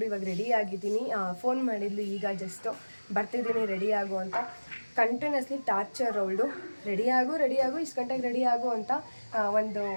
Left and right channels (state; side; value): inverted; both; correlation -1.00